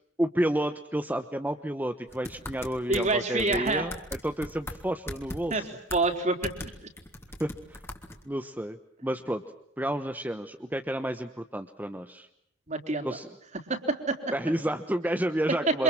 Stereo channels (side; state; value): both; normal; correlation 0.58